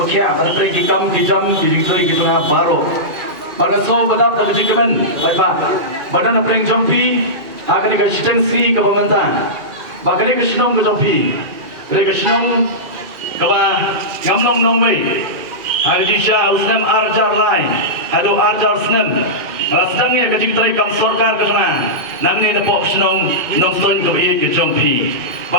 apa pergi kam kijam dijoi gitu na baru pada so bedak kejigiman baik badan apa yang jompi akan dikasih si ke pemerintah bahkan dikasih nong ke jompi dikasih nong kaba ngamnong nongway hari disha usnam arjar lain hado arjar snam sedangnya kecik terai kam sorkar ke sana nang ni napok senong nong stoin ke iit ke jompi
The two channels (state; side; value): late; left; 2.4 ms